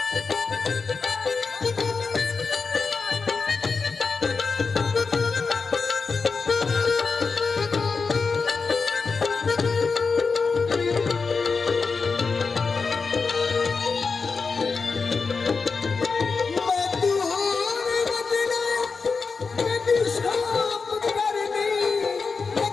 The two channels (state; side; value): quieter; right; 4.8 dB